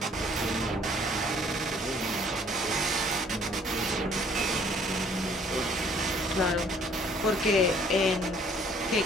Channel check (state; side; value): normal; both; correlation 0.59